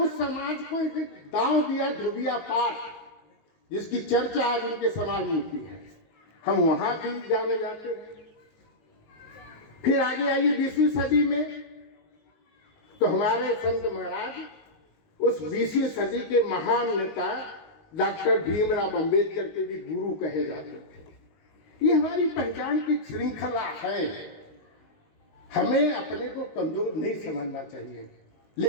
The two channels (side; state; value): right; late; 19 ms